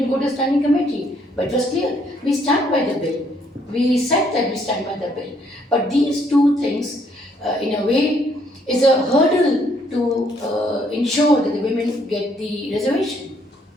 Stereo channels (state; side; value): normal; both; correlation 0.68